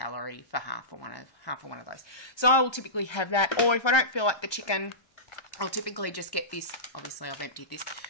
for half of one of those. So I will typically have that, or if I don't feel like the chicken, I'll typically just get this. Obviously I've emptied this.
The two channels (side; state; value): right; late; 1.3 ms